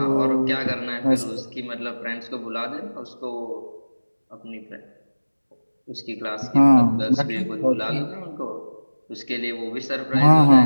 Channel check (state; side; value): inverted; both; correlation -1.00